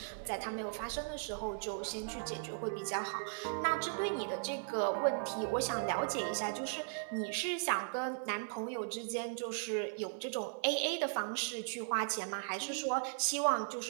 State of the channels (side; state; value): left; silent; 53 dB below the other